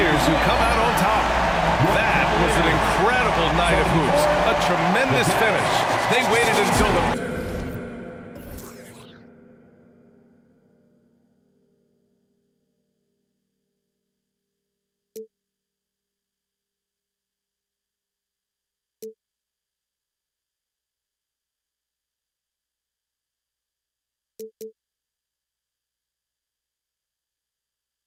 who come out on top. That was an incredible night of hoops. A tremendous finish. They waited until the...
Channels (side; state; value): both; identical; correlation 1.00